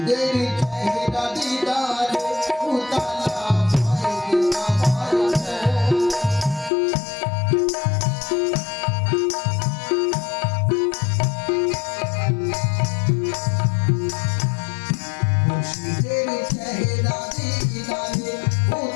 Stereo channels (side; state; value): right; drops out; at 6.7 s